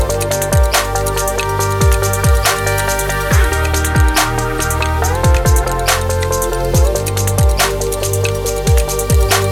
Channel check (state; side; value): identical; both; correlation 1.00